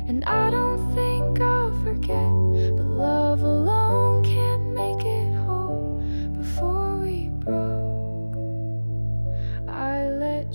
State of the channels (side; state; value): both; inverted; correlation -1.00